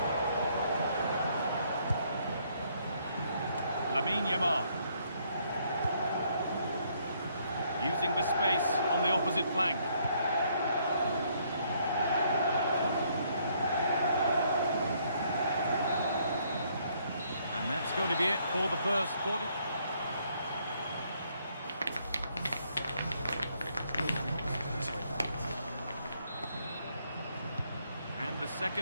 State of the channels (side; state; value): both; inverted; correlation -0.69